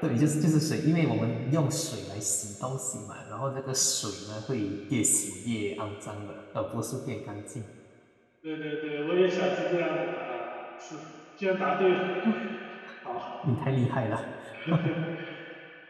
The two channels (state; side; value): identical; both; correlation 1.00